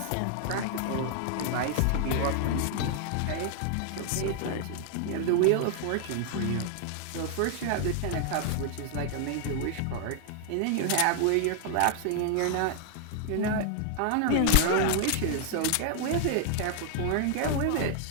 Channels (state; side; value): different; both; correlation 0.00